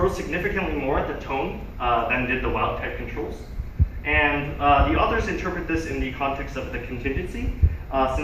significantly more at the tone than did the wild type controls. And the authors interpret this in the context of the contingency,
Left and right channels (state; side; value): identical; both; correlation 1.00